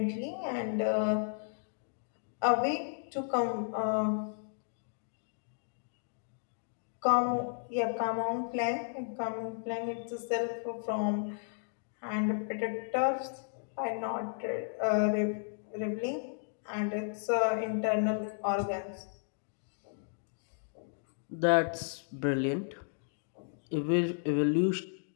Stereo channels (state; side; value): silent; right; digital silence